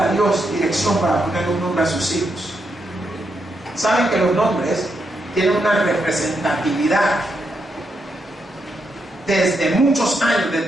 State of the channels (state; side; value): normal; both; correlation 0.81